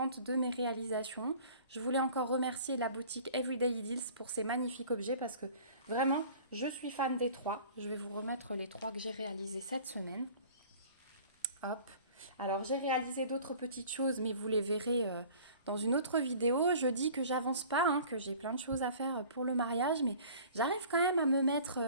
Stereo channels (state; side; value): inverted; both; correlation -0.47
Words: de mes réalisations. Je voulais encore remercier la boutique Everyday Deals pour ces magnifiques objets parce que vraiment, je suis fan des 3. Je vais vous remettre les 3 que j'ai réalisés cette semaine. Hop. Alors j'ai réalisé d'autres petites choses, mais vous les verrez dans une autre vidéo. Je dis que j'avance pas, que j'ai plein de choses à faire pour le mariage, mais j'arrive quand même à me mettre